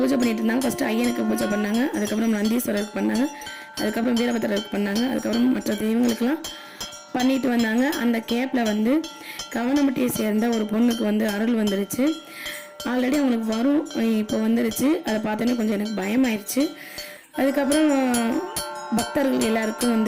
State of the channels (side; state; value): both; identical; correlation 1.00